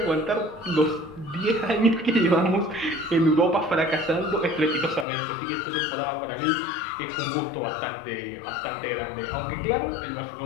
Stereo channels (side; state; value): right; drops out; at 5.1 s